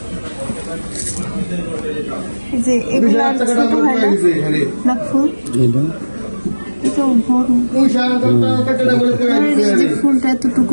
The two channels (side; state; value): both; inverted; correlation -1.00